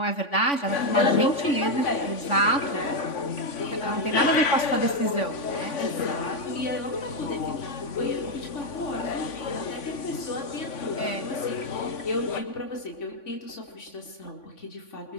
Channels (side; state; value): right; late; 3.5 ms